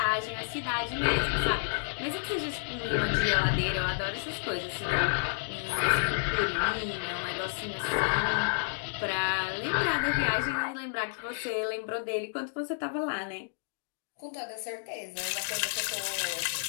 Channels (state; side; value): silent; right; digital silence